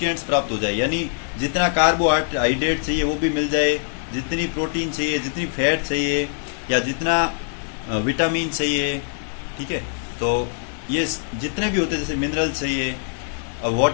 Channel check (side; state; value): right; silent; digital silence